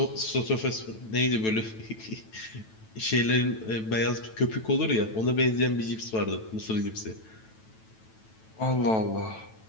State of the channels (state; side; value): late; right; 9.1 ms